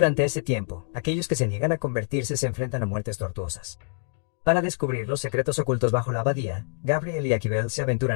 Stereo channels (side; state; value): right; silent; digital silence